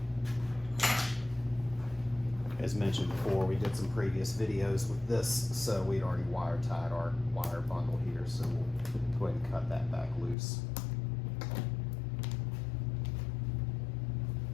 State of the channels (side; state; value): right; drops out; at 10.4 s